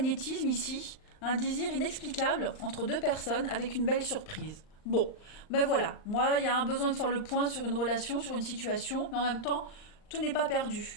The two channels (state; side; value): late; right; 39 ms